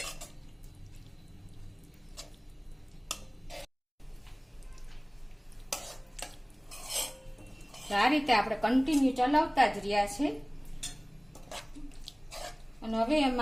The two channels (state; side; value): identical; both; correlation 1.00